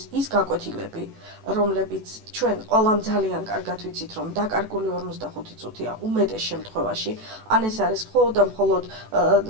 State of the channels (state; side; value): late; left; 18 ms